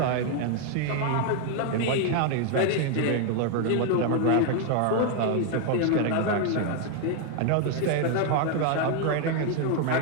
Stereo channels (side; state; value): both; different; correlation 0.00